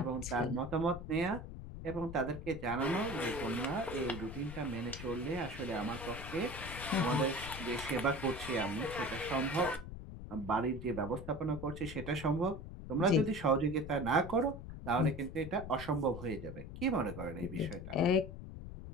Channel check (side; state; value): left; noise; rumble, 10 dB below the sound